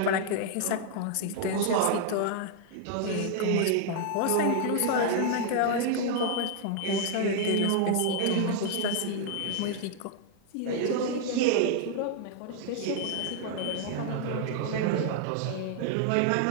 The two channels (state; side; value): different; both; correlation 0.00